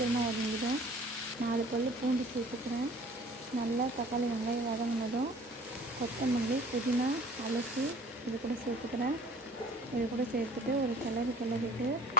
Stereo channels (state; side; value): normal; both; correlation 0.50